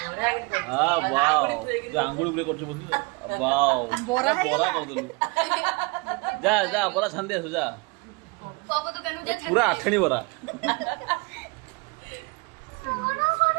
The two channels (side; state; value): left; quieter; 28.4 dB